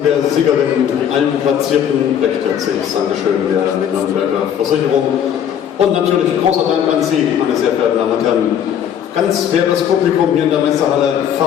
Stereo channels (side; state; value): right; quieter; 9.2 dB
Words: Der Siegerin, allen Platzierten, recht herzliches Dankeschön der Nürnberger Versicherung und natürlich großer Dank an Sie, meine sehr verehrten Damen und Herren. Ganz faires Publikum hier in der Messehalle,